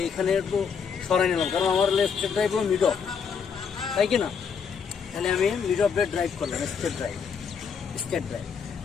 এইখানে একটু সরাই নিলাম, কারণ আমার স্ট্রেট ড্রাইভ হলো মিড অফ, তাই কি না? তাহলে আমি মিড অফ ড্রাইভ করলাম, স্ট্রেট ড্রাইভ।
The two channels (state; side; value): quieter; right; 6.4 dB